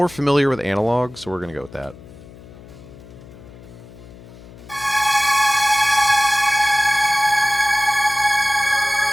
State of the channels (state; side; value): noise; left; hum, 19 dB below the sound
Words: familiar with analog, so we're gonna go with that.